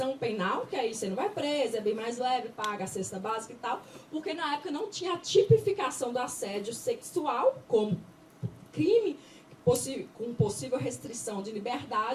penal, que aí você não vai preso, é bem mais leve, paga a cesta básica e tal, porque na época não tinha a tipificação do assédio sexual como crime com possível restrição de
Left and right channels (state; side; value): identical; both; correlation 1.00